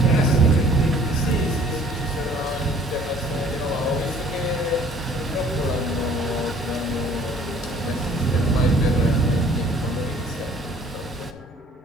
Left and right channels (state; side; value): normal; both; correlation 0.54